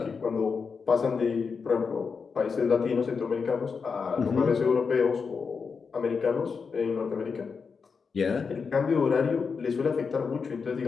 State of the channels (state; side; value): quieter; right; 5.4 dB